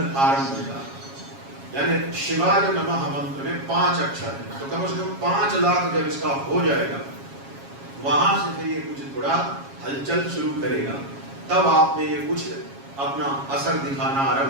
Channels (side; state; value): left; late; 7.3 ms